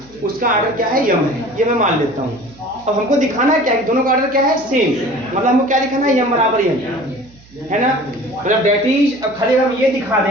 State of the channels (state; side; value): noise; right; hum, 26 dB below the sound